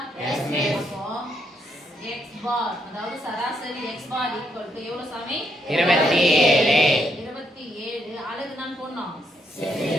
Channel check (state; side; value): normal; both; correlation 0.76